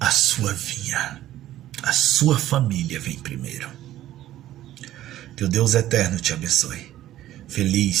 sua vinha. A sua família vem primeiro. Que o Deus eterno te abençoe.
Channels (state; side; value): quieter; left; 13.6 dB